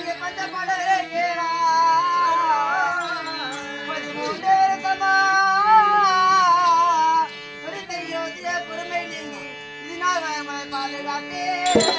பந்த பாடலே கேளா 13 தமா யோதிய குருமை நீங்கி இதனால் பாதுகாத்தே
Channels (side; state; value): both; identical; correlation 1.00